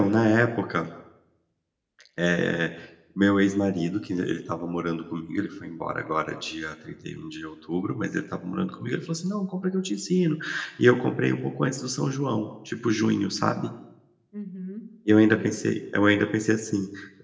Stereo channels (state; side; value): identical; both; correlation 1.00